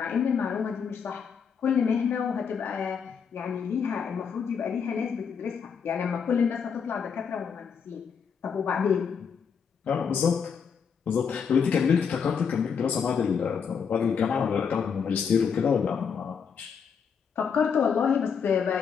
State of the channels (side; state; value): right; quieter; 6.6 dB